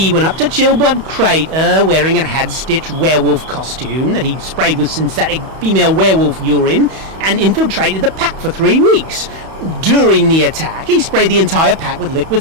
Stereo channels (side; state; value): left; late; 31 ms